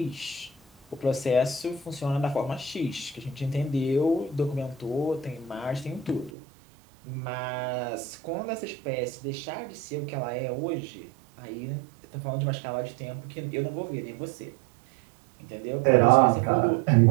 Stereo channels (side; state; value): left; drops out; at 6.3 s